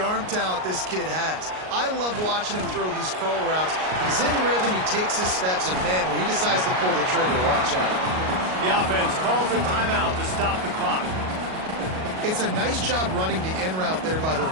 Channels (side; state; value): left; late; 38 ms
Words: talent this kid has? I love watching him throw these curl routes. He's in rhythm, he takes his steps, and man, when he decides to pull the trigger, watch out. The offense calls a timeout to stop the clock. It's a nice job running the in route there by the